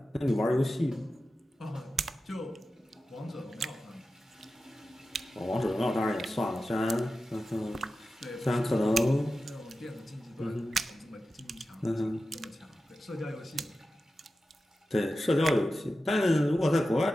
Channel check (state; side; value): normal; both; correlation 0.93